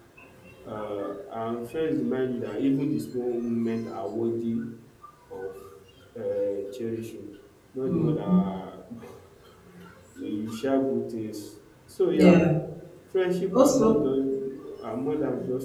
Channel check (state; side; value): identical; both; correlation 1.00